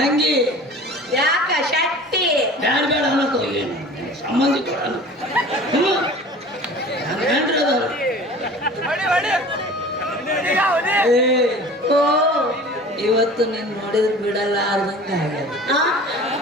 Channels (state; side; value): normal; both; correlation 0.42